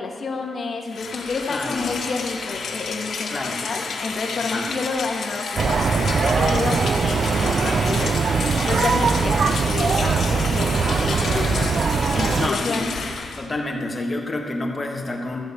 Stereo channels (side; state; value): both; normal; correlation 0.82